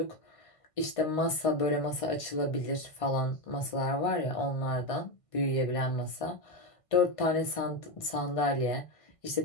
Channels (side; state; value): right; late; 1.5 ms